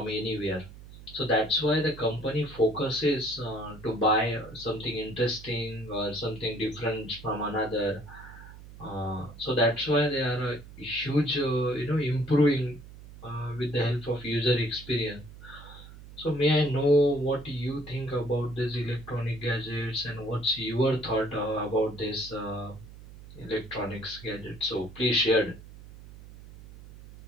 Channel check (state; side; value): noise; right; hum, 17 dB below the sound